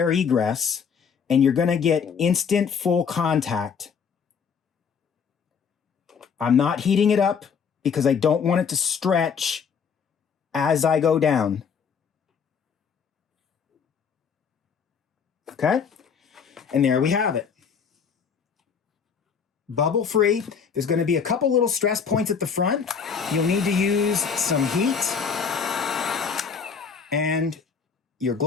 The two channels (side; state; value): right; quieter; 6.4 dB